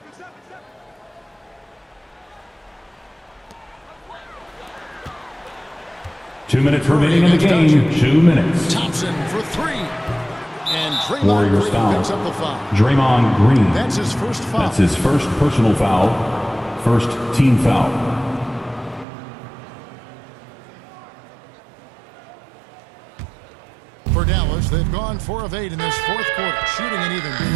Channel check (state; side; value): drops out; left; at 19.1 s